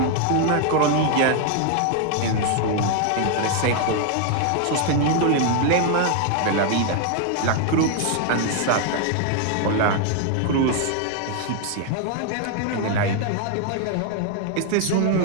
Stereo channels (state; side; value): different; both; correlation 0.00